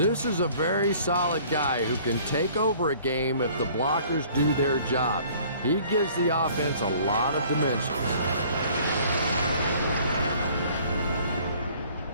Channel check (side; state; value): both; inverted; correlation -0.54